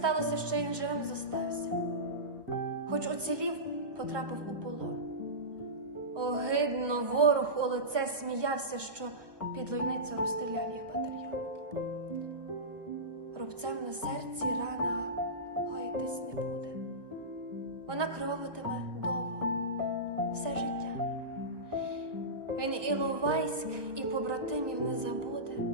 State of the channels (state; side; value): late; left; 1.0 ms